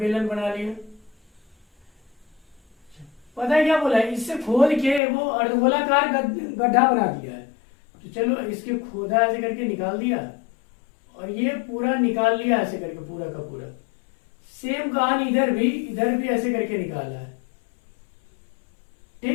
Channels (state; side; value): drops out; right; at 5.0 s